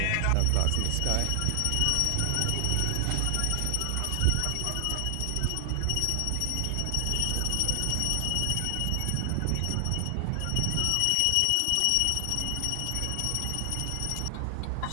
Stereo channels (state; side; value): different; both; correlation 0.00